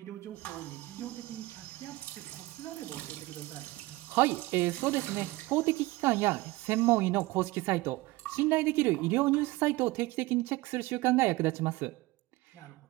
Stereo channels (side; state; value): left; quieter; 20.2 dB